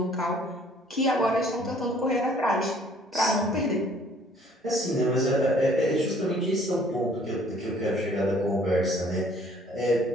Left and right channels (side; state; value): both; normal; correlation 0.58